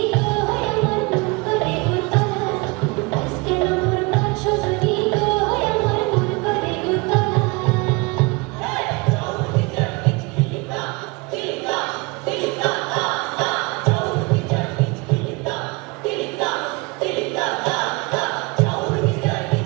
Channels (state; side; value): quieter; left; 26.5 dB